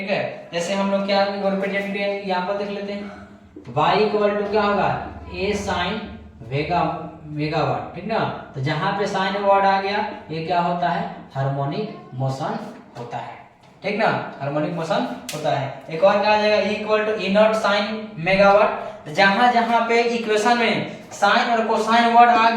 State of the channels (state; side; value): identical; both; correlation 1.00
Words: है। जैसे हम लोग क्या रिप्रेजेंट यहाँ पर देख लेते हैं, y इक्वल टू क्या होगा, a साइन मेगावाट, ठीक ना, तो जहां पे साइन वर्ड आ गया, ये क्या होता है, हार्मोनिक मोशन होता है, ठीक ना, हार्मोनिक मोशन होता है। एक और क्या आ जाएगा, E equal to E naught sine omega t, जहां जहां पे इक्वेशन में साइन और कोसाइन वर्ड आ